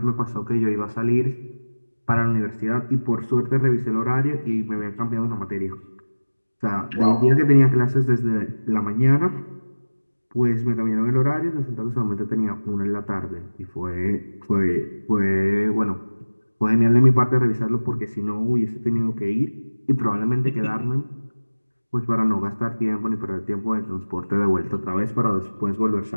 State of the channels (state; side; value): inverted; both; correlation -1.00